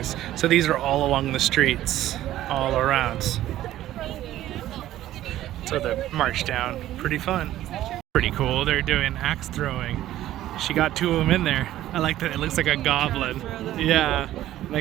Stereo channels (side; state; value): left; quieter; 13.7 dB